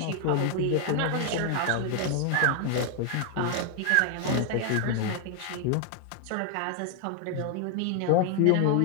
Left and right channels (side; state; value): both; different; correlation 0.00